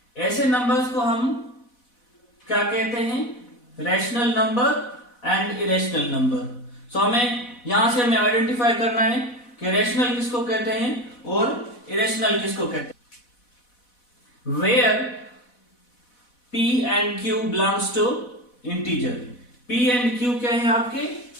ऐसे नंबर्स को हम क्या कहते हैं? Rational number and irrational number. So हमें यहां से हमें आइडेंटिफाई करना है कि रैशनल किसको कहते हैं और इरेशनल किसको कहते हैं. Where p and q belongs to integer. p and q क्या है? आपके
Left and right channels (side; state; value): right; late; 4.1 ms